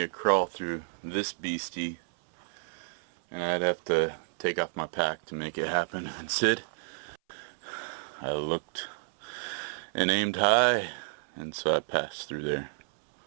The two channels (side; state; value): left; silent; 58 dB below the other